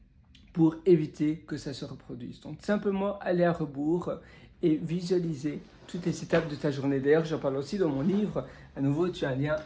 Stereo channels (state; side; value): identical; both; correlation 1.00